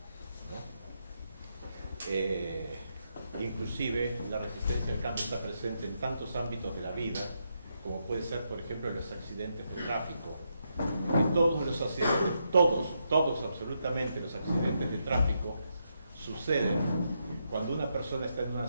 ¿no? inclusive la resistencia al cambio está presente en tantos ámbitos de la vida, como puede ser, por ejemplo, los accidentes de tráfico. Que todos los accidentes, todos absolutamente los accidentes de tráfico suceden cuando una persona está en una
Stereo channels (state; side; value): inverted; both; correlation -0.81